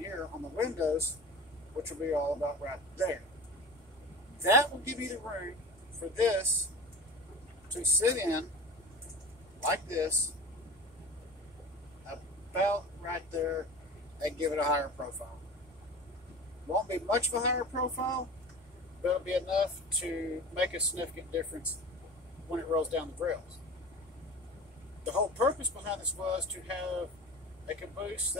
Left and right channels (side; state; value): both; normal; correlation 0.34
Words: on the windows, which will be all about right there. That will give you the room for this to sit in like this, about right there, and give it a higher profile. Won't be much of a higher profile, but it'll be enough to make a significant difference when it rolls down the rails. The whole purpose behind this was to have a caboose